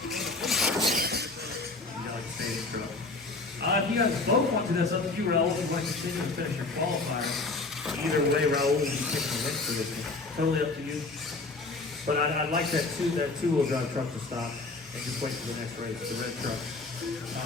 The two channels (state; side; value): quieter; right; 3.5 dB